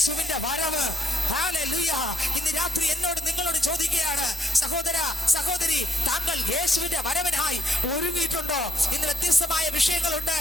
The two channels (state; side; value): normal; both; correlation 0.72